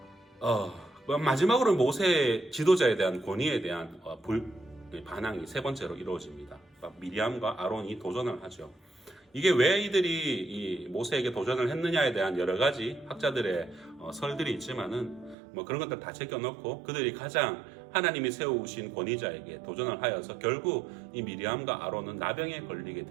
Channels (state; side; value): drops out; left; at 15.4 s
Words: 마지막으로 모세 지도자에 대한 권위에 대한 반항이 세 번째로 이루어집니다. 미리암과 아론이 도전을 하죠. 이게 왜 이들이 이 모세에게 도전을 했느냐에 대한 여러 가지 학자들의 설들이 있지만은 그런 것들 다 제껴놓고 그들이 가장 하나님이 세우신 권위자에게 도전을 하여서 결국 이 미리암과 아론은 나병에 걸리게